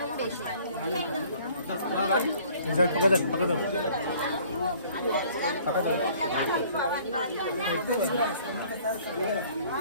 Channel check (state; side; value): inverted; both; correlation -0.55